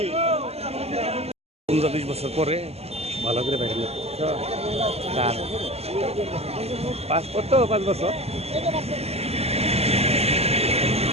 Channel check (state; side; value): late; left; 0.30 ms